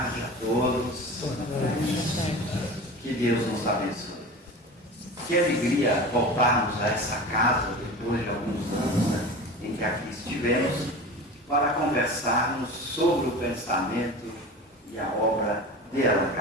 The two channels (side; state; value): both; normal; correlation 0.33